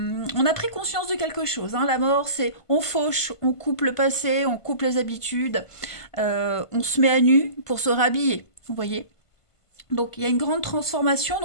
a pris conscience de quelque chose, hein. La mort, c'est on fauche, on coupe le passé, on coupe les habitudes, on se met à nu pour se rhabiller. Vous voyez? Donc il y a une grande transformation,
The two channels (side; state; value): right; late; 1.5 ms